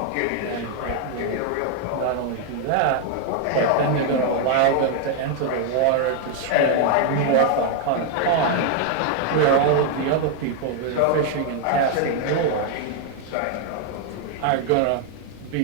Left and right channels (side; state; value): both; different; correlation 0.00